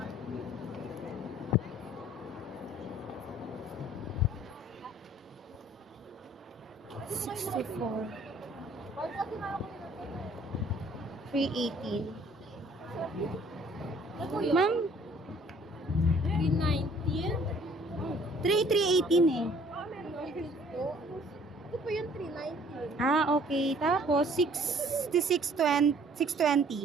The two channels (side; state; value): both; normal; correlation 0.57